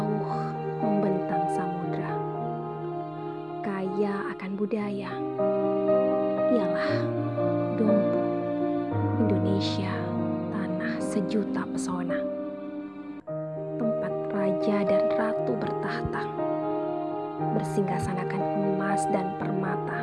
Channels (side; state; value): both; identical; correlation 1.00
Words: membentang samudra, kaya akan budaya, ialah Dumpu, Indonesia, tanah sejuta pesona, tempat raja dan ratu bertahta, bersinggasanakan emas dan